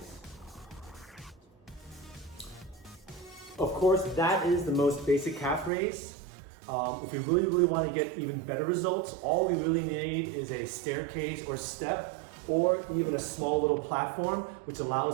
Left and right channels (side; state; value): left; drops out; at 5.7 s